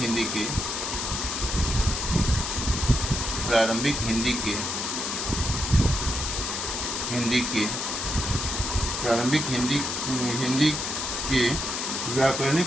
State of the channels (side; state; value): left; noise; hiss, 3 dB below the sound